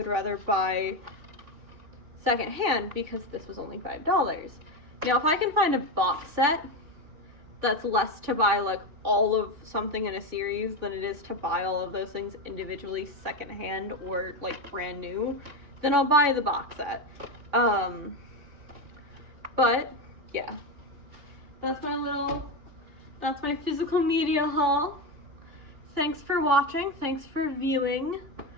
rather buy secondhand because this was only $5. Now if I can find a box set that's less to buy like all of something in a series than it is to buy all of those things individually secondhand or like brand new, then I'll buy the box set. But yeah, that's my physical media haul. Thanks for watching, thanks for viewing,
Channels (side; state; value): left; late; 3.6 ms